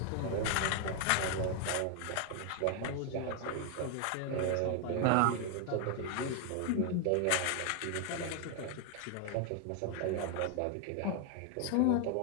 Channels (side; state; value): both; different; correlation 0.00